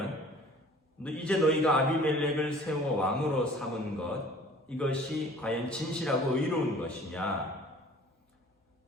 이제 너희가 아비멜렉을 세워 왕으로 삼은 것 이것이 과연 진실하고 의로운 것이냐?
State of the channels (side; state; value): both; normal; correlation 0.49